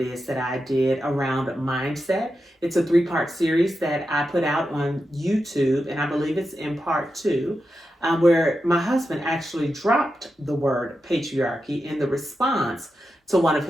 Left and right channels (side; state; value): both; normal; correlation 0.89